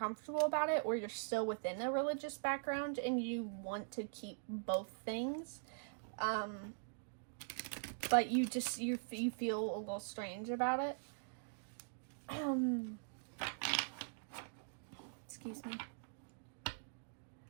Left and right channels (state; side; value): silent; left; digital silence